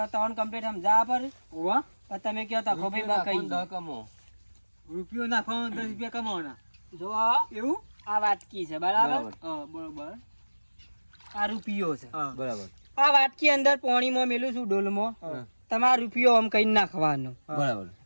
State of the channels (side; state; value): both; inverted; correlation -1.00